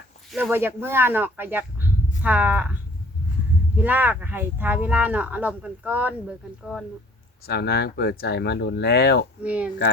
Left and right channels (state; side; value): normal; both; correlation 0.54